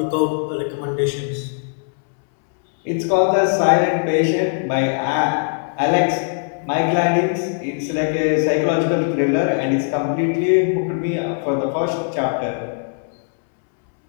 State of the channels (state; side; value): silent; right; 66 dB below the other